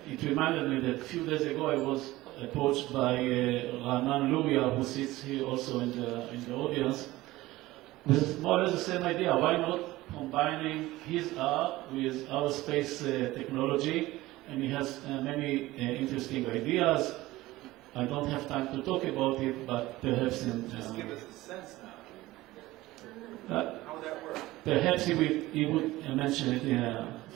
it reminded me that a few days ago I was approached by Ranan Luria, who sits here also in the audience, with more or less the same idea. Why not combining his art with our space technology? And he has many interesting ideas. I don't have time to talk about it, but perhaps in... Just give us a sense now. How would that work? Perhaps he would mention it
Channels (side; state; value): left; quieter; 18.0 dB